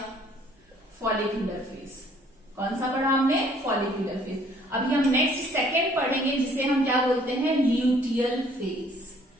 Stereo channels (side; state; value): both; normal; correlation 0.60